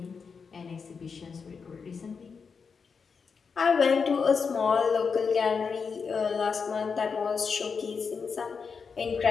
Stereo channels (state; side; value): quieter; right; 5.6 dB